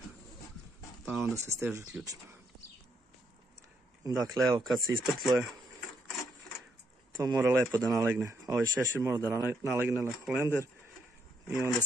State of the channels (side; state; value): both; normal; correlation 0.75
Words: pa onda se steže ključima. Dakle, evo kad se isprtluje, to mora lepo da nalegne. Ovaj šešir mora da nalegne na holender i onda